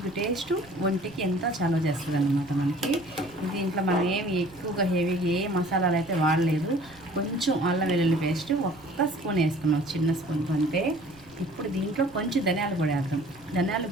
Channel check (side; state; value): right; noise; rumble, 24 dB below the sound